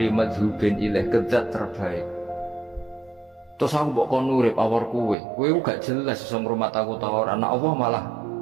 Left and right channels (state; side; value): drops out; left; at 5.2 s